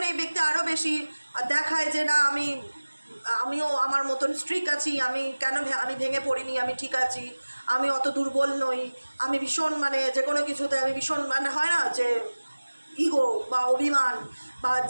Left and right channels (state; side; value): inverted; both; correlation -1.00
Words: এই ব্যক্তি আরও বেশি দেখায় যে না আমিও আমার মতন স্ট্রিক আছি, আমি ভেঙে পড়িনি, আমি ঠিক আছি, আমি অত দুর্বল নই, আমি ভীষণ মানে যে কোনো কিছুতে আমি ভীষণ মানে হয় না যে ইগো বা অভিমান বা